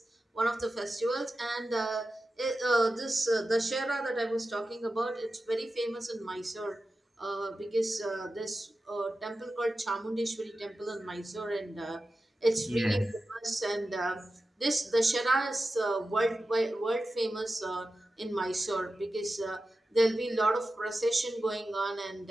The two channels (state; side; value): normal; both; correlation 0.93